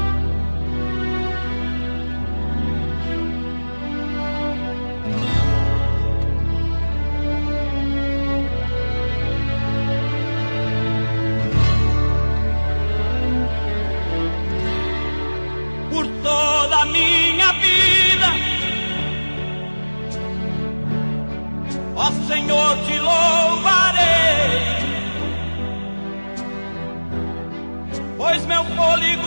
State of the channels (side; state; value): both; inverted; correlation -1.00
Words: Por toda a minha vida, ó Senhor, te louvarei, pois meu fôlego